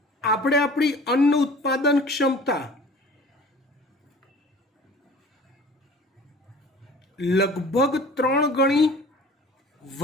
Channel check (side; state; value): both; normal; correlation 0.45